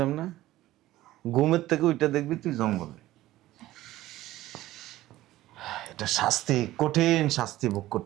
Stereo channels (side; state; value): left; quieter; 15.7 dB